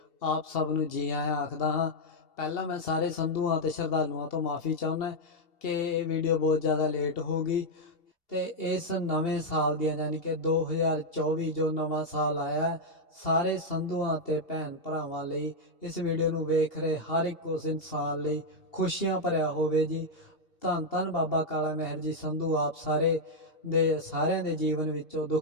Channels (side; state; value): right; late; 2.7 ms